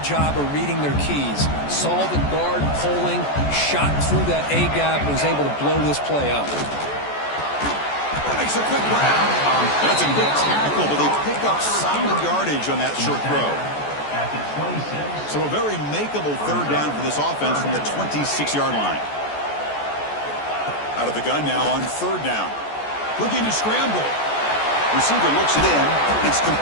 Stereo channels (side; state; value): right; late; 14 ms